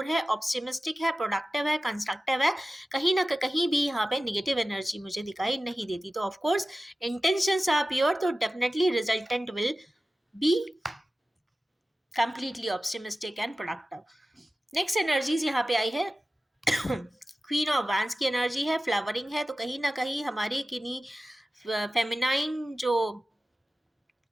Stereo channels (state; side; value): normal; both; correlation 0.95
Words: है, ऑप्टिमिस्टिक है, प्रोडक्टिव है, कंस्ट्रक्टिव है। कहीं ना कहीं भी यहाँ पे निगेटिव एनर्जी मुझे दिखाई नहीं देती। तो of course intentions are pure, तो definitely resultant will be completely optimistic and productive. Next energies यहाँ पे आई है क्वीन ऑफ वैंस की एनर्जी है, फ्लावरिंग है। तो कहीं ना कहीं हमारी किन्हीं फेमिनाइन जो